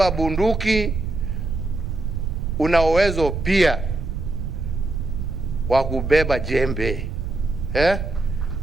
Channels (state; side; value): noise; right; rumble, 3 dB below the sound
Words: bunduki una uwezo pia wa kubeba jembe,